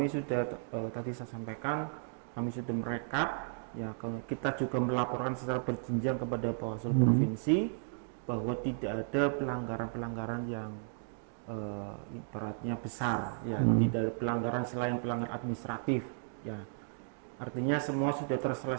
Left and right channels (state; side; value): silent; left; digital silence